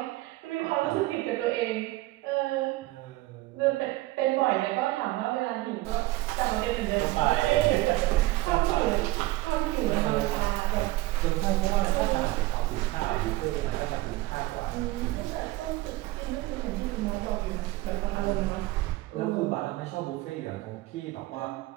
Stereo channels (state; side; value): quieter; left; 18.3 dB